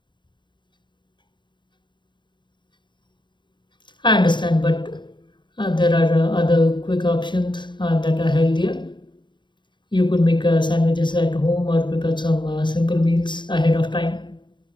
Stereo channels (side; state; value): right; late; 0.23 ms